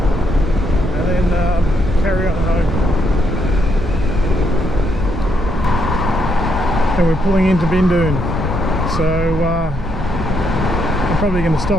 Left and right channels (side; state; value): both; normal; correlation 0.76